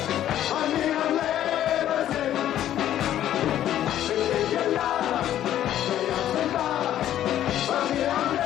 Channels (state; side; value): quieter; right; 11.7 dB